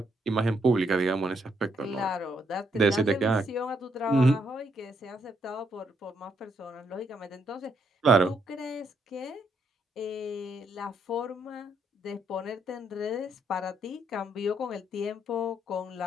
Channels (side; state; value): both; normal; correlation 0.74